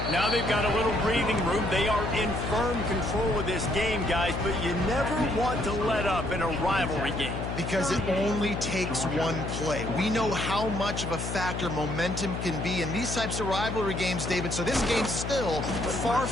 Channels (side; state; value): left; noise; hum, 4 dB below the sound